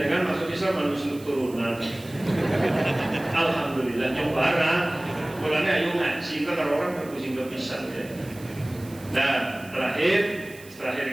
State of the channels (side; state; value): right; noise; hiss, 21 dB below the sound